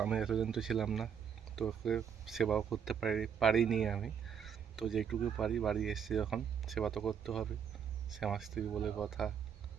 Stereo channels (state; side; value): quieter; left; 7.6 dB